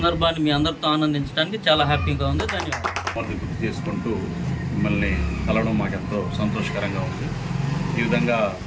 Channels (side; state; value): both; identical; correlation 1.00